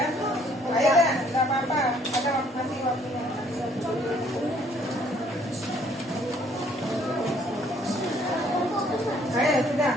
Ayo deh, nggak apa-apa. Ada masih waktunya. Ayo, sudah.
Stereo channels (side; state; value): both; normal; correlation 0.62